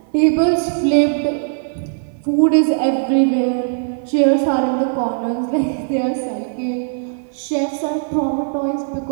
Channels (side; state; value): left; silent; 56 dB below the other